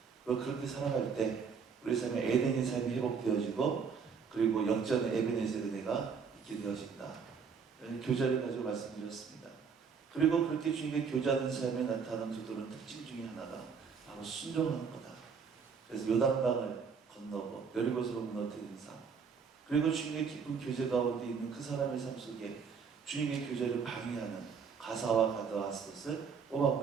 그리고 그렇게 살아갈 때 우리 삶에 에덴의 삶이 회복되어지고, 그리고 역전의 에베네zer 은혜가 있게 되어진다. 교제를 가지고 말씀드렸습니다. 그리고 그렇게 주님께 교제하는 삶에 나타나는 두 다른 특징 중에 하나가 바로 순종하는 거다. 그래서 요단강을 건너고 여리고성을 무너뜨리는 삶, 그리고 주님의 깊은 교제 가운데 있는 그 사람의 삶 속에 주님의 교제를 방해하는 가사와 가드와 앗을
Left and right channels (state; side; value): quieter; left; 6.0 dB